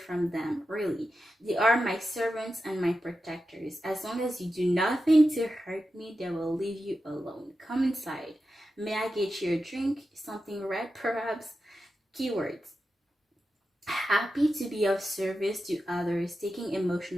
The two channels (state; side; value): normal; both; correlation 0.91